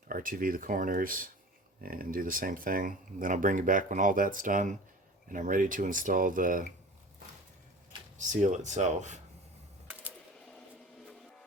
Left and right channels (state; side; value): normal; both; correlation 0.39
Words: RTV the corners, and do the same thing. And then I'll bring you back when all that's done and I'm ready to install the seal itself.